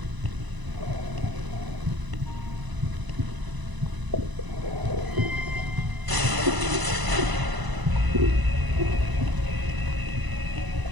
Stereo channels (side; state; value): left; late; 1.0 ms